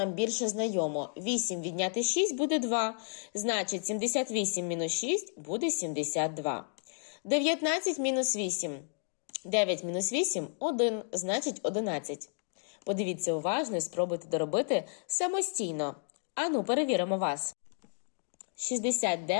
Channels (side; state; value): right; silent; 56 dB below the other